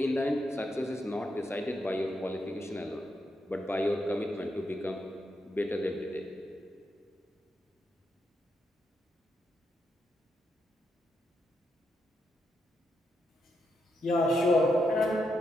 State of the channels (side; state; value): both; normal; correlation 0.82